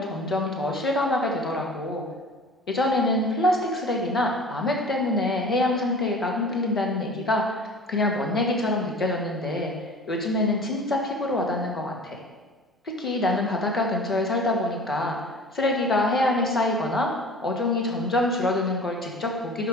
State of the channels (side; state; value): both; normal; correlation 0.42